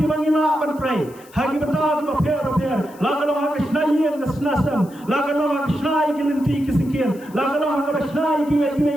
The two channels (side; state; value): left; noise; hiss, 25 dB below the sound